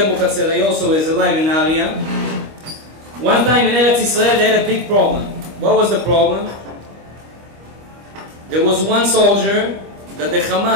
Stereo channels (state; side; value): late; left; 25 ms